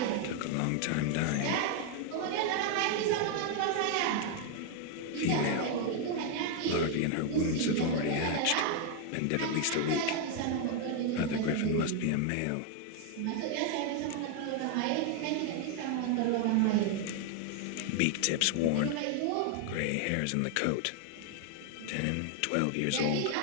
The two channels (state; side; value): different; both; correlation 0.00